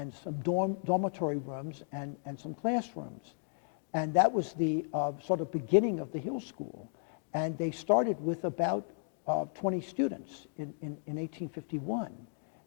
some dormitory rooms and some classrooms. And that was the sort of beginning of the Hill School. And they started with about 20 students in 1851.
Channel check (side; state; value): right; silent; digital silence